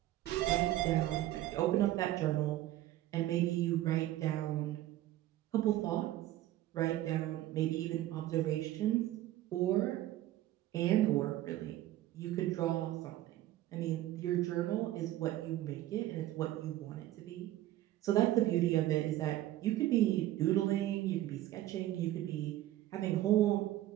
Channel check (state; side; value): quieter; left; 14.6 dB